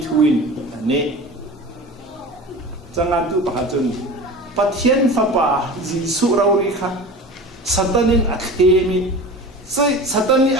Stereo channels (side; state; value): both; normal; correlation 0.34